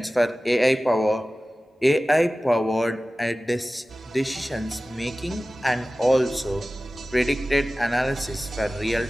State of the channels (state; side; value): normal; both; correlation 0.96